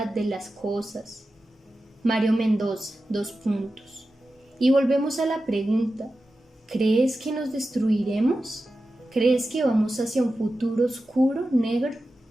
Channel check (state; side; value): normal; both; correlation 0.93